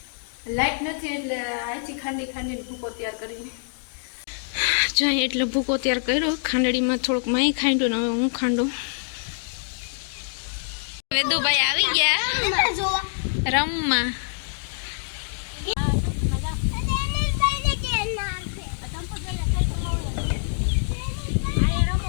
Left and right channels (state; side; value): silent; right; digital silence